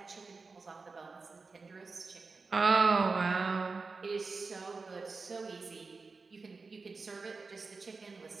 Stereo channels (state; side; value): quieter; left; 4.2 dB